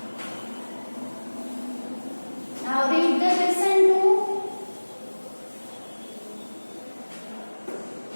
Now read the question 2.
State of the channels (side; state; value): both; inverted; correlation -1.00